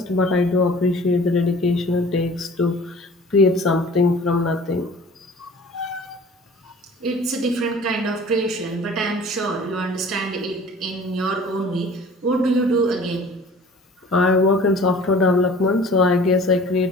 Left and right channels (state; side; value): normal; both; correlation 0.46